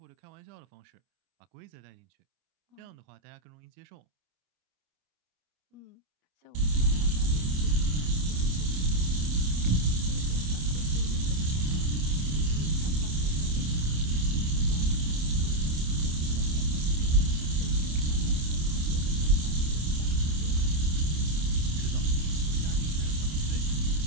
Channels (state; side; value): late; left; 27 ms